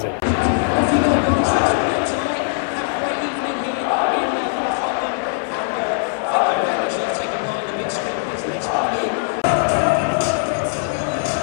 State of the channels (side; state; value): right; silent; 63 dB below the other